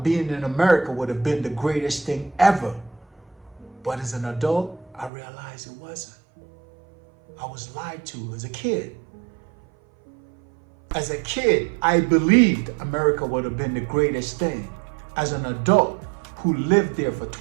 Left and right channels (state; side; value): drops out; left; at 5.1 s